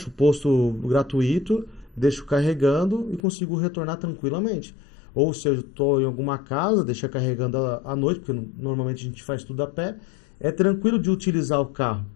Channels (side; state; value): right; drops out; at 3.2 s